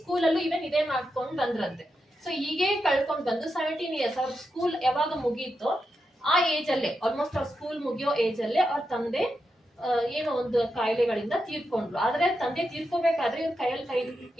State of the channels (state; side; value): normal; both; correlation 0.86